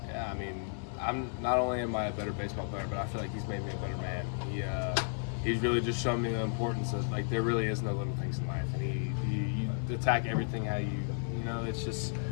Yeah, I'm not only am I a better baseball player, but I feel like he's made me a better man. He's really just shown me the importance of there really is no little things in life, and you attack everything how it's just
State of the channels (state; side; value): silent; right; digital silence